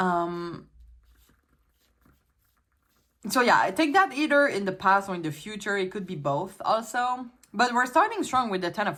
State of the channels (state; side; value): identical; both; correlation 1.00